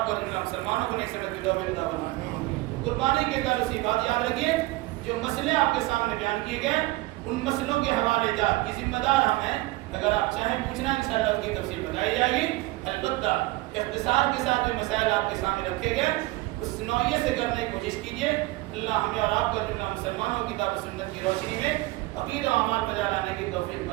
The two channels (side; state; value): left; quieter; 20.0 dB